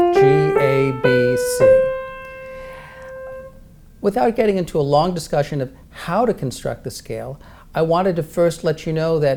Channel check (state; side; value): identical; both; correlation 1.00